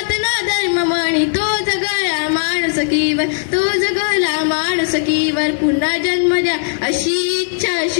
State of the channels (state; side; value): silent; right; digital silence